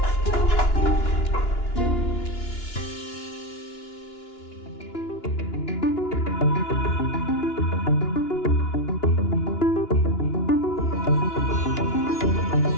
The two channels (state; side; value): late; right; 2.9 ms